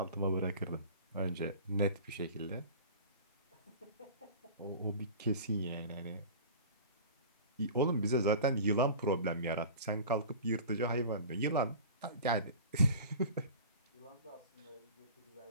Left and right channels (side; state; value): both; inverted; correlation -0.39